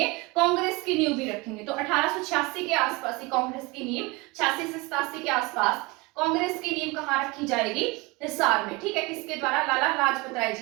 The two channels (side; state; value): left; quieter; 24.8 dB